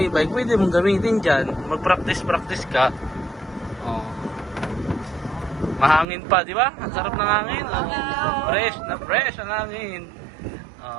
e-bike, pwede mong gamitin dyan. Mag-practice ka. Mahangin pa, di ba? Ang sarap ng hangin. Fresh ang hangin.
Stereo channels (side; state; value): left; drops out; at 6.1 s